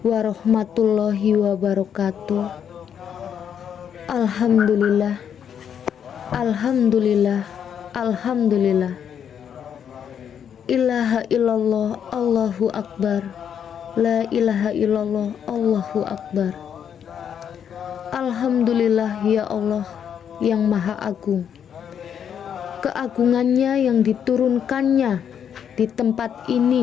warahmatullahi wabarakatuh. Alhamdulillah, alhamdulillah, alhamdulillah. Ilaha illallah Allahu akbar. La ilaha illallah Allahu akbar. Alhamdulillah ya Allah yang maha agung. Keagungannya yang diturunkannya di tempat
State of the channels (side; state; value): right; quieter; 8.4 dB